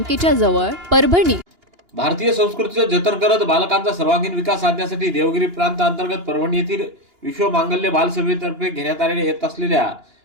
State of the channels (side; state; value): left; late; 2.9 ms